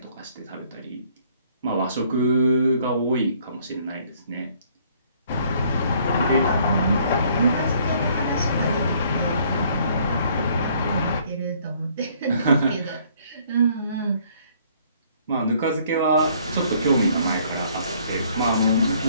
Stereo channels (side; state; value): both; inverted; correlation -0.62